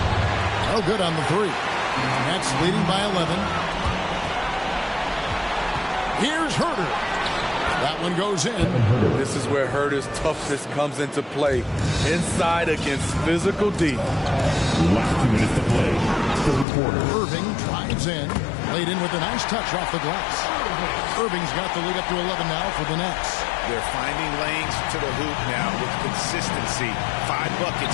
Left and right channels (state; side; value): drops out; right; at 16.7 s